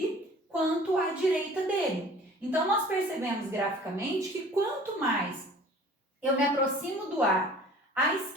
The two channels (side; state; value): both; normal; correlation 0.48